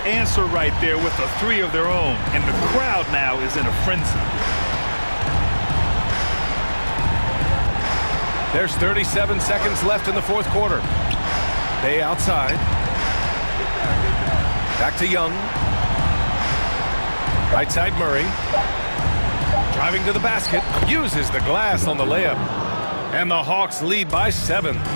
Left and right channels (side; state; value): both; inverted; correlation -1.00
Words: answer right there with a 3 of their own. And the crowd now is in a frenzy. There's 37 seconds left in the fourth quarter. Bay outside. Back to Young. Right side Murray. Driving to the basket. Uses the glass on the layup. And the Hawks lead by 7.